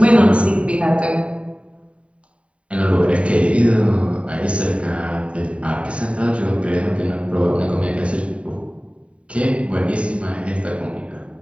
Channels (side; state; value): left; late; 0.062 ms